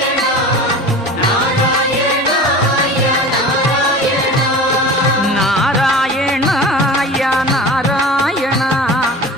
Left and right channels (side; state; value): both; normal; correlation 0.36